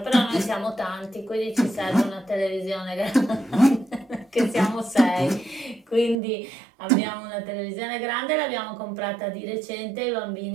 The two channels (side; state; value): left; drops out; at 6.2 s